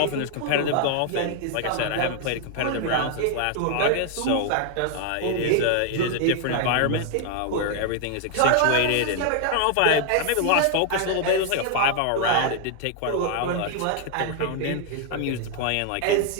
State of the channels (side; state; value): both; different; correlation 0.00